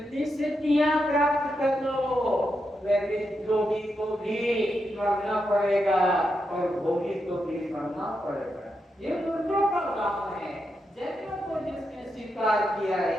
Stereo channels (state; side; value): normal; both; correlation 0.85